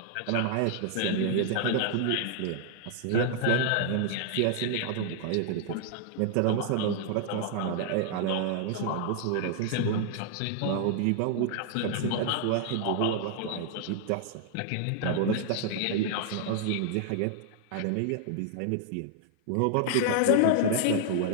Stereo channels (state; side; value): different; both; correlation 0.00